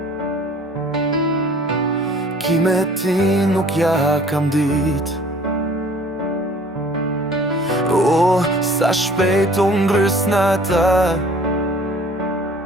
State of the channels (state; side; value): normal; both; correlation 0.51